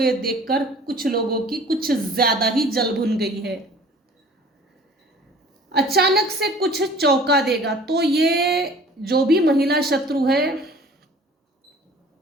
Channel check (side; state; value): both; normal; correlation 0.48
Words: देखकर कुछ लोगों की कुछ ज्यादा ही जल भुन गई है। अचानक से कुछ चौंका देगा। तो ये जो भी महिला शत्रु है,